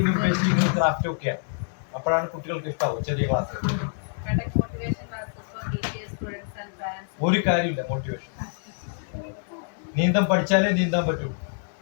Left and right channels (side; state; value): right; silent; 61 dB below the other